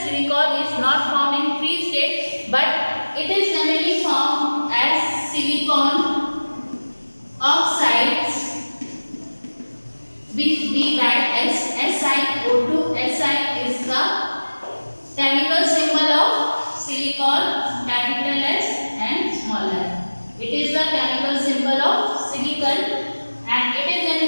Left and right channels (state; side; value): inverted; both; correlation -1.00